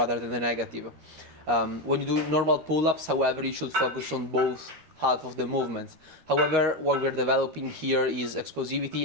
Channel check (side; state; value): left; late; 13 ms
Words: than the negative. When you do normal pull-ups, however, you should focus on both half of the movements. However, what we're developing here is